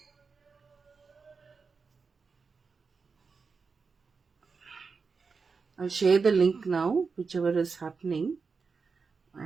I'll share the link now, whichever is happening.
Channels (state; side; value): quieter; left; 5.0 dB